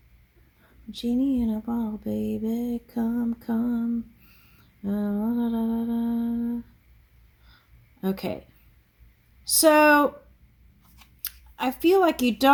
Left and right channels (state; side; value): identical; both; correlation 1.00